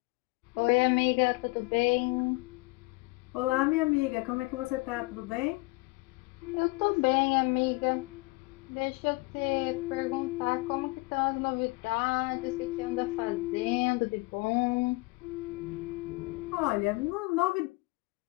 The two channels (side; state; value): right; quieter; 25.9 dB